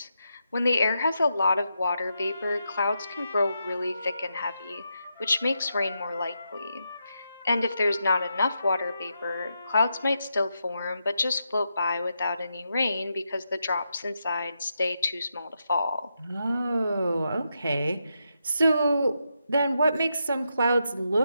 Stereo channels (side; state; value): both; inverted; correlation -0.84